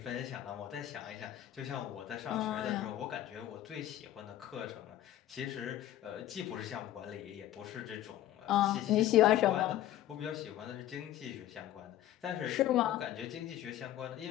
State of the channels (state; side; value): quieter; right; 13.1 dB